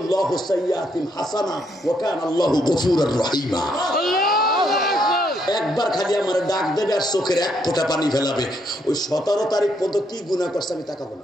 সাইয়্যাতিন হাসানা ওয়া কানা আল্লাহু গফুরুর রহিমা। একবার খালি আমার ডাক দেবে আর চোখের এক ফোঁটা পানি ফেলাবে। ওই 17 তারিখ পর্যন্ত কি গুনাহ করছে আমি তাকাবো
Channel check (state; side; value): normal; both; correlation 0.73